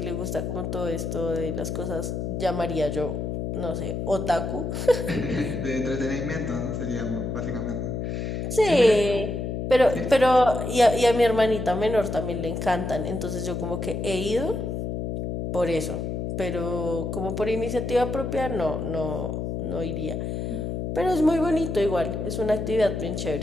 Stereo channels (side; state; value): left; noise; hum, 3 dB below the sound